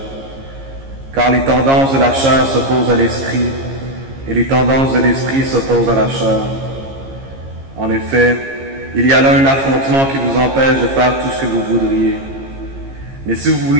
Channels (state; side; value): late; left; 15 ms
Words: Car les tendances de la chair s'opposent à l'Esprit, et les tendances de l'Esprit s'opposent à la chair. En effet, il y a là un affrontement qui vous empêche de faire tout ce que vous voudriez. Mais si vous vous